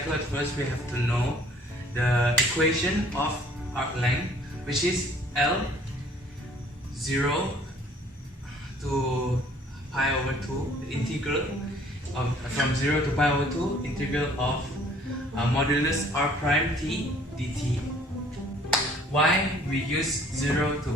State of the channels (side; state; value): both; normal; correlation 0.57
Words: first we have to know the equation of arc length, which is L 0 to pi over 2, the integral of from 0 to pi over 2, integral of modulus r prime t dt. Why we use 0 to